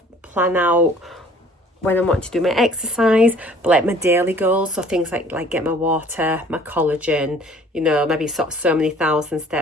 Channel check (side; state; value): both; normal; correlation 0.53